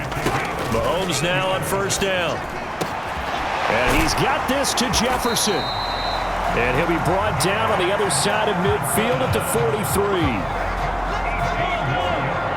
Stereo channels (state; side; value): identical; both; correlation 1.00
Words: Mahomes now on first down. And he's got this to Jefferson. And he'll be brought down on the other side of midfield at the 43.